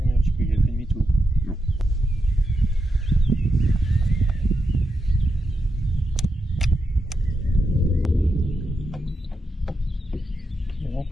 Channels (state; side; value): normal; both; correlation 0.86